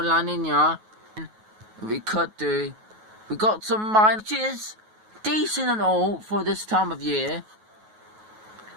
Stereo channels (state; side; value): late; left; 9.3 ms